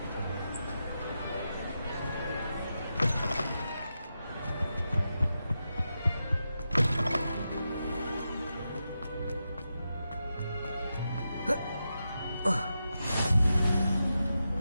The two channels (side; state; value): both; inverted; correlation -0.88